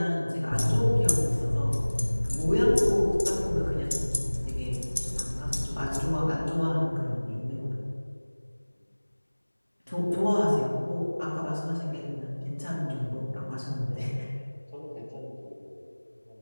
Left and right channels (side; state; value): both; inverted; correlation -1.00